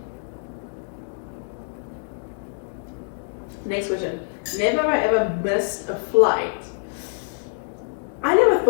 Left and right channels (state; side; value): silent; right; digital silence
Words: Next question. Never have I ever missed a flight. I never